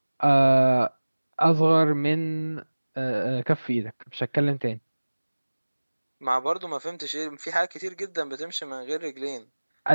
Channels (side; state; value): both; inverted; correlation -1.00